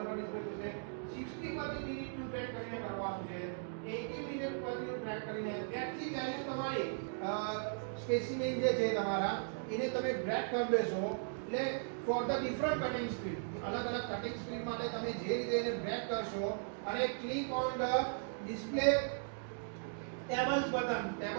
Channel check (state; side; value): silent; left; digital silence